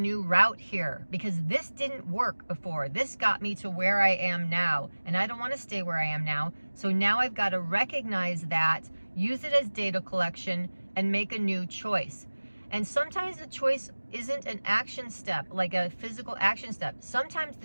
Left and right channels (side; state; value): both; inverted; correlation -1.00